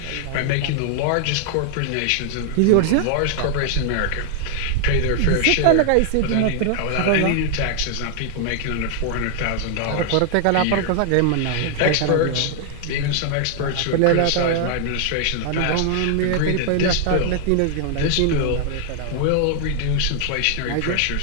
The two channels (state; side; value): different; both; correlation 0.00